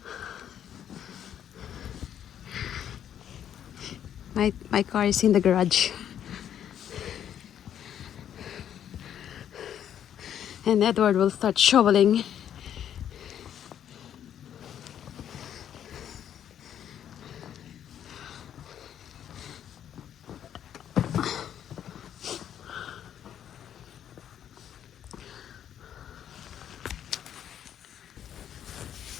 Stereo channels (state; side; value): quieter; right; 9.8 dB